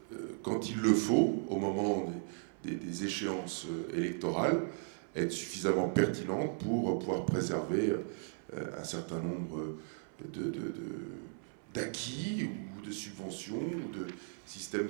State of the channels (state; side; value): silent; left; 54 dB below the other